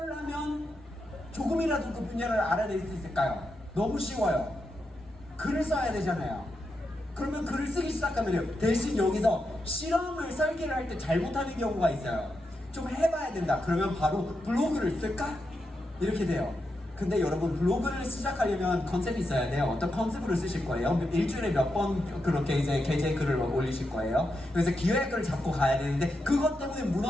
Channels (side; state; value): both; normal; correlation 0.86